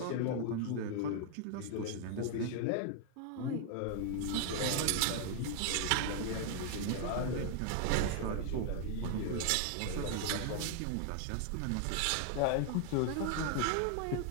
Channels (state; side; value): different; both; correlation 0.00